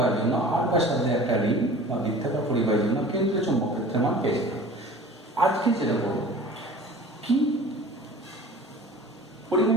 জন্য আর ব্যাসার্ধের একটা রিং বা বৃত্তাকার পরিবাহীর জন্য কেন্দ্রের চৌম্বক ক্ষেত্রের মান পেয়েছিলাম। আজকে যেটা বলবো কি,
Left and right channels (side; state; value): both; normal; correlation 0.42